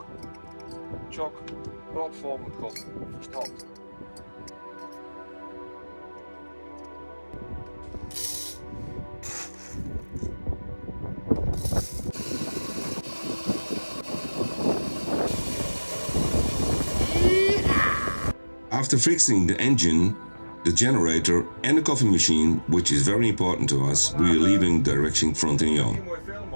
Tjok. Rotvol met god. Verstopt. After fixing the engine, the generator and the coffee machine, which is very important to us, we are leaving direction Frontignan.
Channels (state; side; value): inverted; both; correlation -1.00